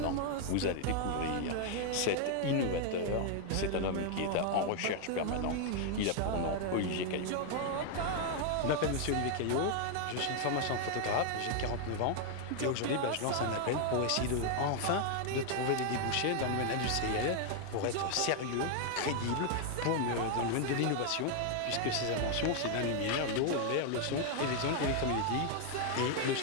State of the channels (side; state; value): both; different; correlation 0.00